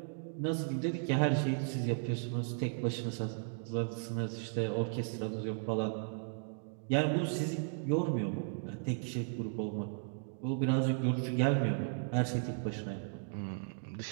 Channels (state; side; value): silent; left; digital silence